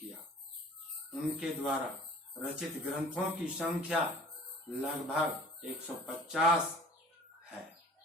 उनके द्वारा रचित ग्रंथों की संख्या लगभग 150 है।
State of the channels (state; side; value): normal; both; correlation 0.47